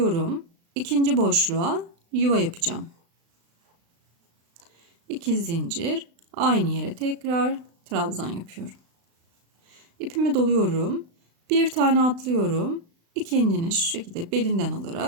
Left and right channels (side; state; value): left; late; 36 ms